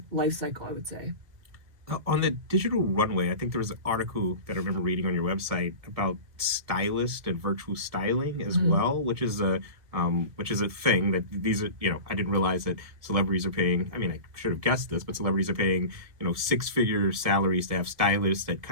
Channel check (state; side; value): late; left; 1.7 ms